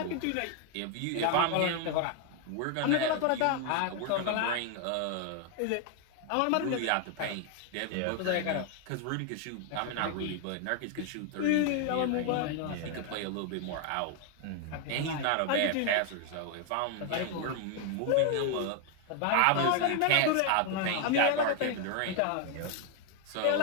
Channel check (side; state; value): both; different; correlation 0.00